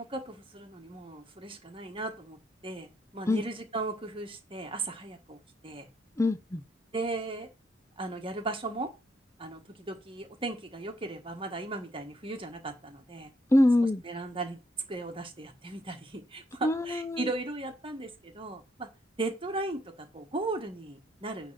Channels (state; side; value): normal; both; correlation 0.73